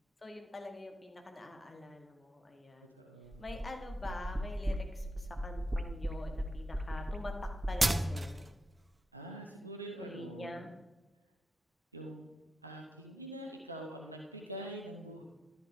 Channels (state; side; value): normal; both; correlation 0.87